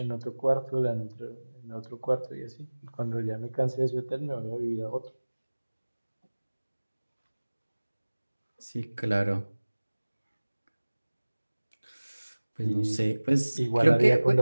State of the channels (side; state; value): both; inverted; correlation -1.00